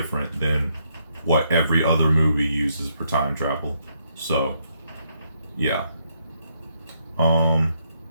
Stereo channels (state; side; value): inverted; both; correlation -0.75